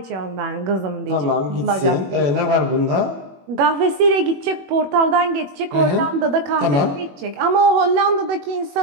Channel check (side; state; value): left; late; 21 ms